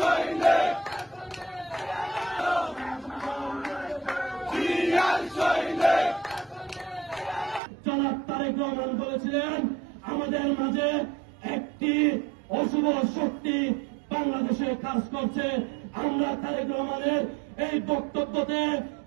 জনাব তারেক রহমান বলেছিলেন, আমাদের মাঝে একটি অশুভ শক্তি বাংলাদেশে কাজ করছে। আমরা তারেক রহমানের এই বক্তব্যতে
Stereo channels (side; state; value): left; drops out; at 7.6 s